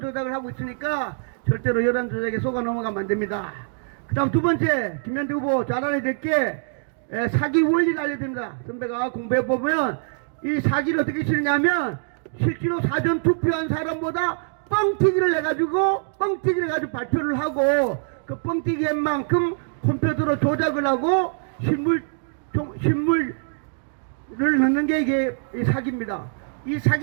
하고 있으니까 절대로 여론조작에 속아 넘어가면 안 됩니다. 그 다음 두 번째, 김현태 후보 잘 알아야 될 게 사기 원리를 알려야 됩니다. 선배가 공부해보면 이 사기를 어떻게 치느냐면, 실제로 사전 투표한 사람보다 뻥튀기를 해가지고 발표를 하고, 그 뻥튀기 한 만큼 컴퓨터로 조작을 하고 신물을 넣는 게 이게 사기입니다. 이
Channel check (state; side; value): silent; left; digital silence